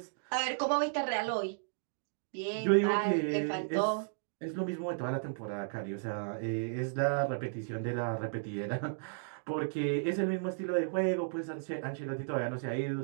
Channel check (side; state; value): left; silent; digital silence